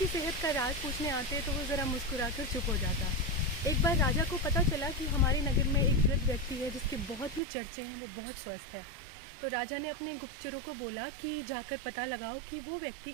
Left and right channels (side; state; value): left; drops out; at 7.4 s